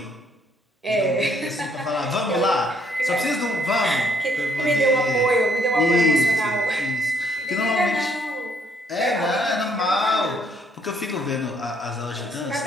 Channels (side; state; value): both; normal; correlation 0.67